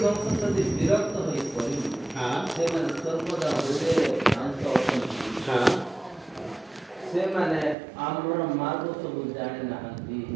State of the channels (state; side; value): drops out; left; at 7.8 s